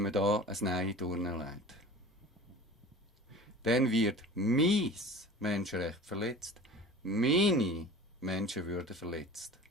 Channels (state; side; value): normal; both; correlation 0.40